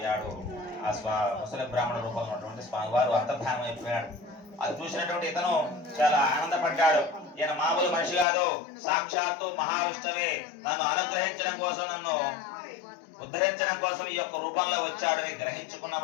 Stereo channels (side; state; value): right; drops out; at 8.2 s